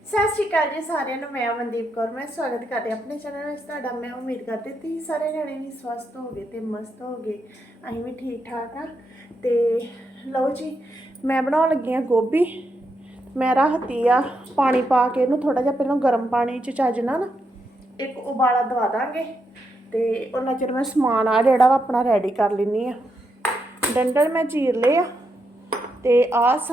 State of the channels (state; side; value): normal; both; correlation 0.82